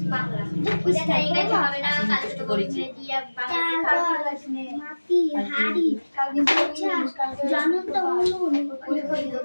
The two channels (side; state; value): both; inverted; correlation -1.00